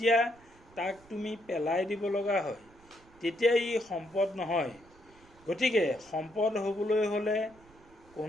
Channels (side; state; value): right; noise; rumble, 27 dB below the sound